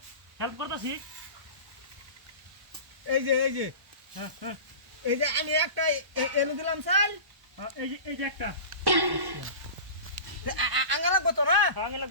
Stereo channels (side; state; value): left; late; 1.1 ms